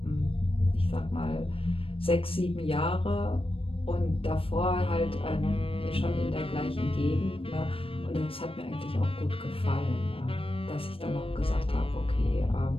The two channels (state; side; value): late; right; 0.27 ms